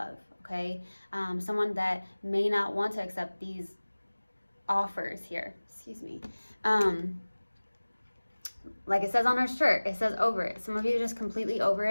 okay? Someone that may not want to accept these offers here, excuse me. Like it says on our shirt, it says over it. Some of you are just completely over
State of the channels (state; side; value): inverted; both; correlation -1.00